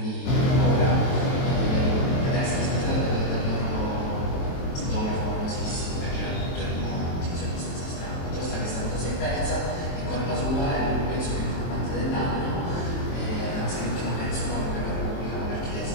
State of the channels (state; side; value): late; right; 23 ms